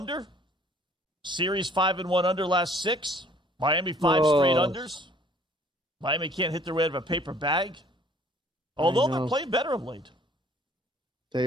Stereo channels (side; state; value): both; normal; correlation 0.56